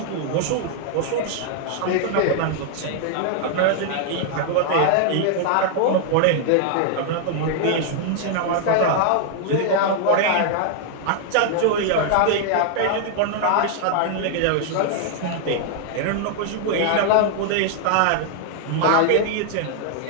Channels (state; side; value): different; both; correlation -0.01